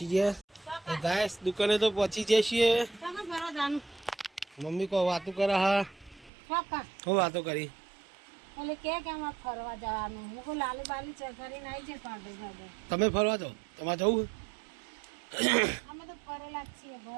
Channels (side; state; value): left; drops out; at 6.3 s